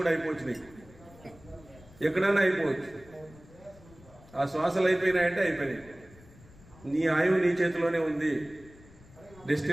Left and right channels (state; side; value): noise; left; rumble, 23 dB below the sound